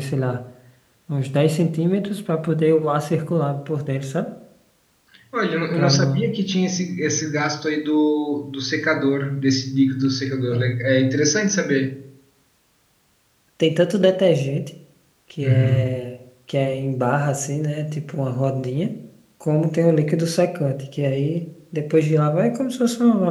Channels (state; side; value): identical; both; correlation 1.00